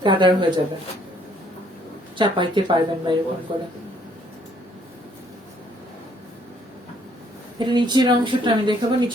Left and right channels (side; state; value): both; normal; correlation 0.65